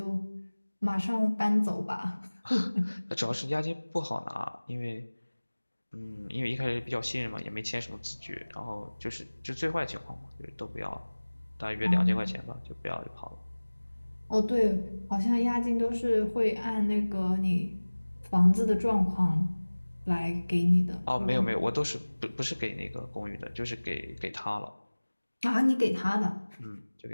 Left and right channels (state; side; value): inverted; both; correlation -1.00